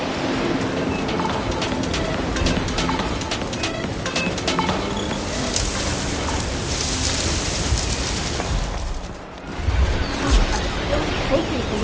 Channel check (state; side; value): identical; both; correlation 1.00